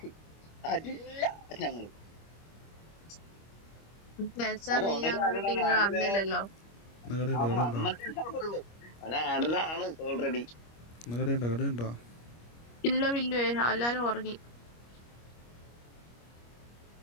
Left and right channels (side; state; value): right; late; 25 ms